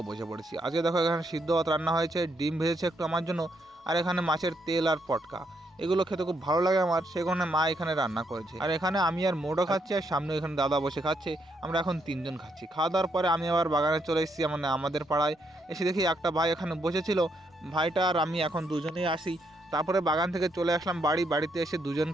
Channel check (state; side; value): normal; both; correlation 0.76